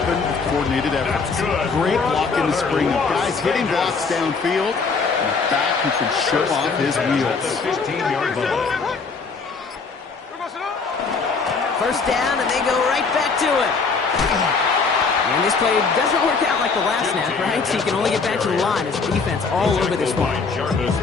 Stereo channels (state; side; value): quieter; right; 4.7 dB